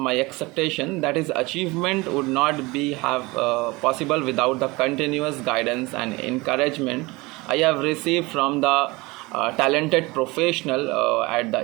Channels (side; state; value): left; quieter; 23.2 dB